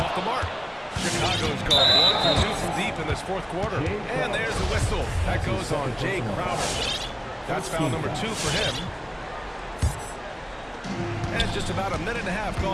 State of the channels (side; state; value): both; identical; correlation 1.00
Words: the mark. Chicago's going 1 for 2 from deep in this fourth quarter. And there's the whistle. That goes on Jay Crowder. That's foul number 2 for him. And just about a minute and a half